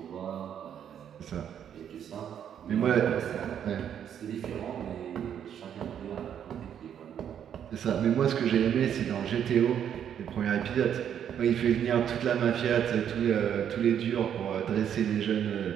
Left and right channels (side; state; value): left; quieter; 9.1 dB